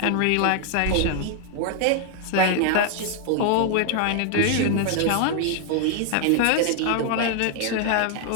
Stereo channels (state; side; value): different; both; correlation 0.00